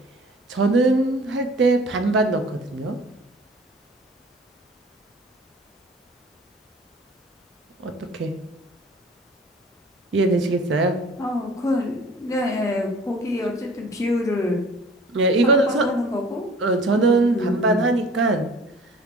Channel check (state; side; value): normal; both; correlation 0.47